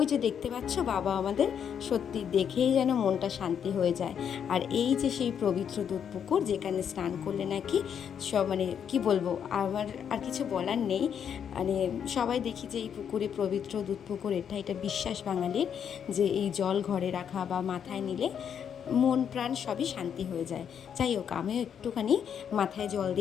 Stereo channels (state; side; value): quieter; right; 8.1 dB